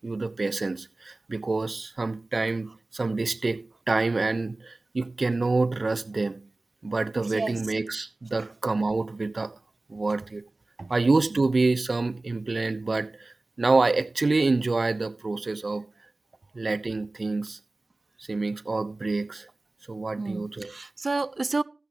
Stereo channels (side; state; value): left; quieter; 3.0 dB